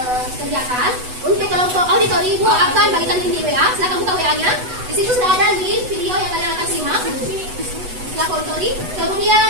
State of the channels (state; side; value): late; left; 8.1 ms